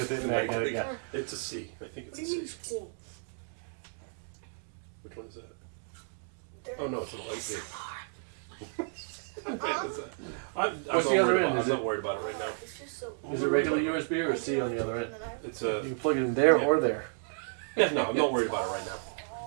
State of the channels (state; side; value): silent; left; digital silence